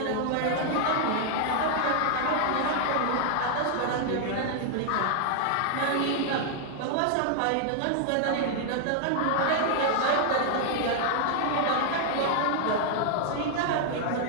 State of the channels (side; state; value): both; different; correlation -0.01